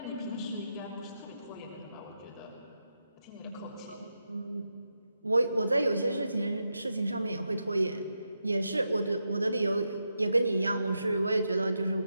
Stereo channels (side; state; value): both; inverted; correlation -0.86